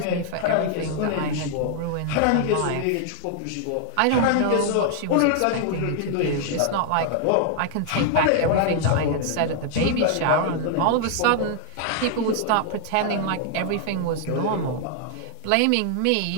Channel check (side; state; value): both; different; correlation 0.00